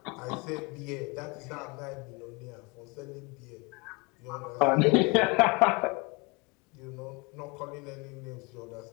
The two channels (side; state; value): right; quieter; 28.2 dB